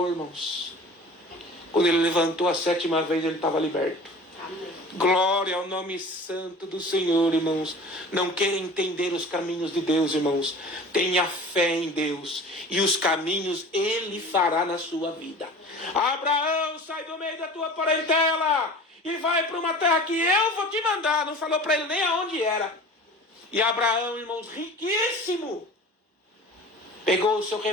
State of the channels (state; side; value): normal; both; correlation 0.40